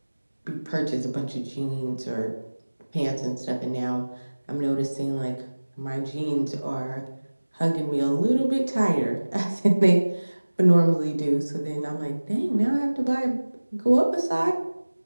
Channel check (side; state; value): both; inverted; correlation -1.00